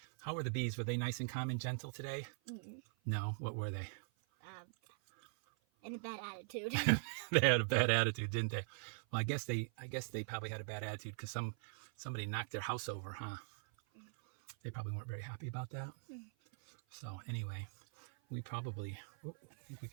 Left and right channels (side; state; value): left; silent; 50 dB below the other